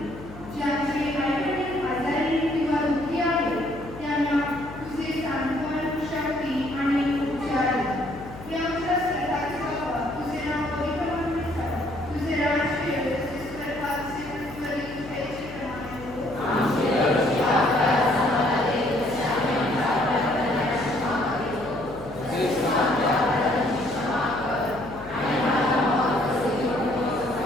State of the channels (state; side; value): noise; left; hum, 16 dB below the sound